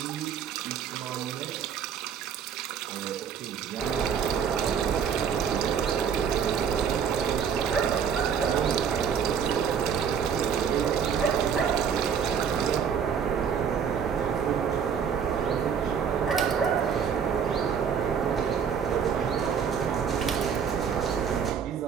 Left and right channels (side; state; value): left; quieter; 7.3 dB